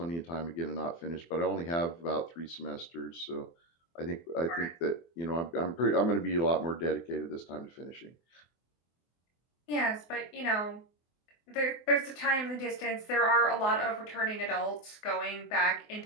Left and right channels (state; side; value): late; right; 24 ms